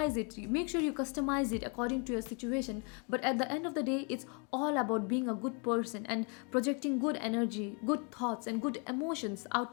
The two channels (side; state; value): right; quieter; 36.0 dB